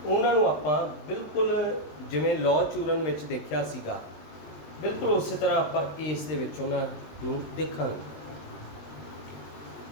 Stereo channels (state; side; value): late; right; 20 ms